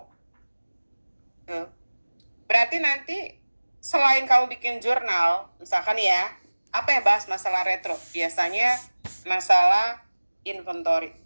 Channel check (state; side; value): inverted; both; correlation -1.00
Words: berarti nanti selain kamu bikin jurnal, misalkan ya, apa yang bahas masalah retro? Biasanya masalah inventory.